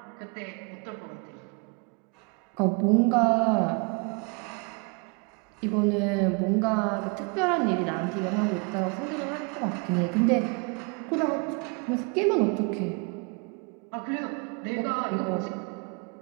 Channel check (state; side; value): quieter; left; 33.6 dB